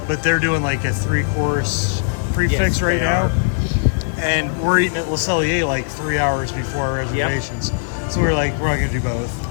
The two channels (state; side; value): silent; right; 66 dB below the other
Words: but they're doing like a 3-course prefix right now. And we're eating at Le Cellier like 3 hours before our reservations. Yep. So we're like, we're not gonna do